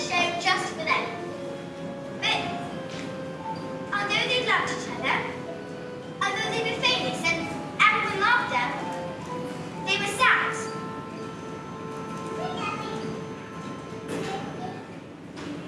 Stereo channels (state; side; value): identical; both; correlation 1.00